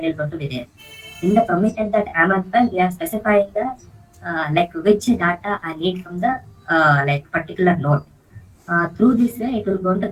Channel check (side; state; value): both; identical; correlation 1.00